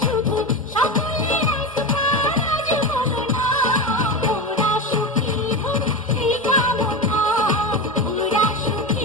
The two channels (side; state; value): both; normal; correlation 0.20